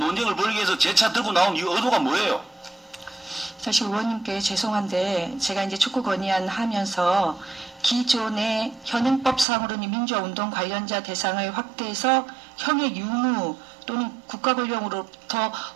벌이기 위해서 제 차 들고 나온 이 의도가 뭐예요? 사실 의원님께 죄송한데 제가 이제 촉구 건의안 하면서 기존의 현행법상으로는 민주화운동 관련자 대상을 확대해서 형의 유무 또는 국가권력으로부터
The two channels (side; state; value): left; drops out; at 9.5 s